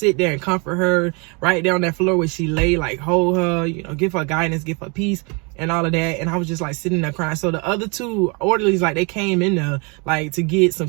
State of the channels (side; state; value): left; quieter; 32.0 dB